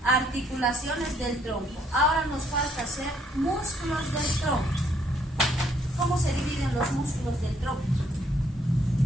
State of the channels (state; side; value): normal; both; correlation 0.67